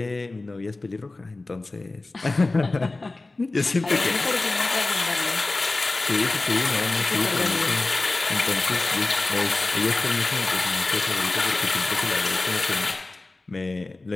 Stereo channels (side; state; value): right; quieter; 3.2 dB